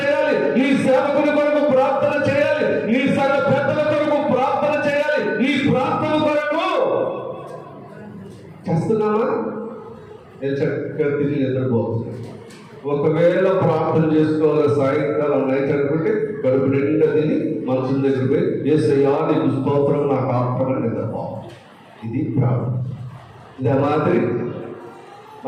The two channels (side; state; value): both; identical; correlation 1.00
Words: నీ సేవకుని కొరకు ప్రార్థన చేయాలి, నీ సంఘ పెద్దల కొరకు ప్రార్థన చేయాలి. నీ ప్రార్థన కొరకు చేస్తున్నామా? నేను చక్కగా తిరిగి నిద్రపోతున్నాను. ఒకవేళ ప్రార్థన చేసుకోవాలి సాయంకాలం నైట్ అనుకుంటే కడుపు నిండా తిని మనసు దగ్గర పోయి యేసయ్యా నీకు స్తోత్రం, నాకు ఆత్మని నిద్రపోవాలి. ఇది ప్రార్థన. ఇదే